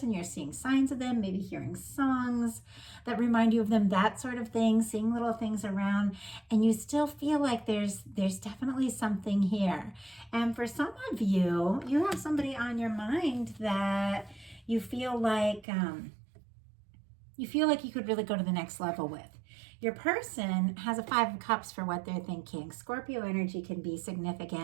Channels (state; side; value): drops out; left; at 15.7 s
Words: You're seeing signs of them, maybe hearing songs that remind you of them, that sort of thing, seeing little things around, and you still feel like there's definitely something here. And for some of you, you have somebody on your mind that you feel like you could really go to the next level with. Your person has a 5 of Cups for what they're thinking. Scorpio energy can be